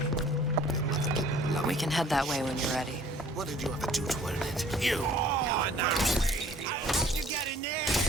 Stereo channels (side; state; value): both; normal; correlation 0.54